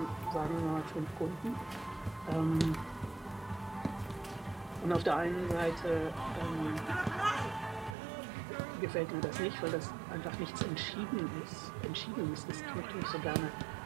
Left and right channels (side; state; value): left; drops out; at 8.0 s